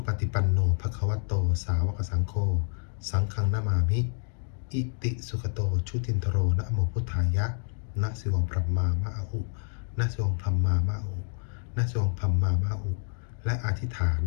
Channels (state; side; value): silent; right; digital silence